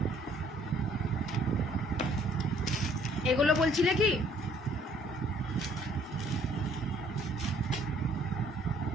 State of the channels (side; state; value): both; normal; correlation 0.60